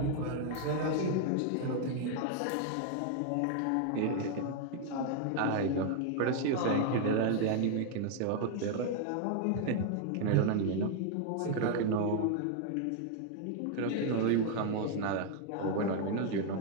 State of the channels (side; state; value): both; different; correlation 0.00